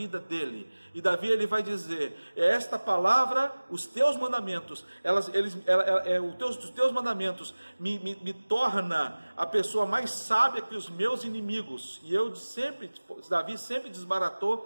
dele. E Davi, ele vai dizer, esta palavra, os teus mandamentos, os teus mandamentos me torna a pessoa mais sábia que os meus inimigos. E Davi sempre desbaratou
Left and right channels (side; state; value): both; inverted; correlation -1.00